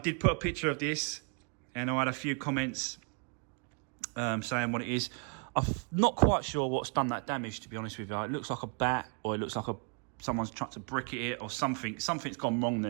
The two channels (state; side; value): quieter; left; 38.9 dB